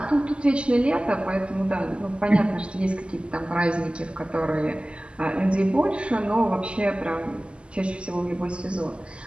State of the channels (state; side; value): late; left; 0.052 ms